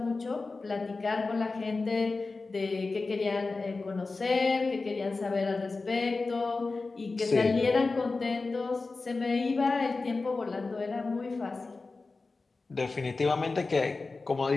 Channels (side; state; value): right; quieter; 3.8 dB